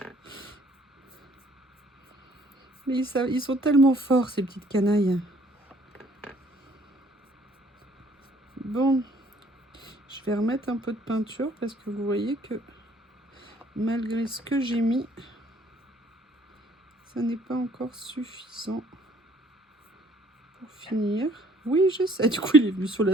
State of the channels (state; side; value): normal; both; correlation 0.60